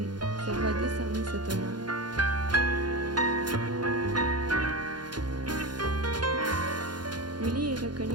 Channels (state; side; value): late; left; 0.71 ms